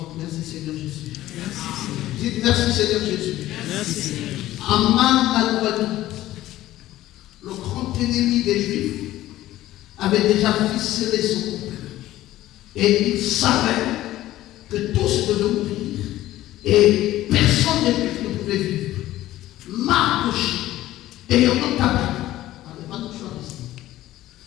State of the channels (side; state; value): right; quieter; 15.0 dB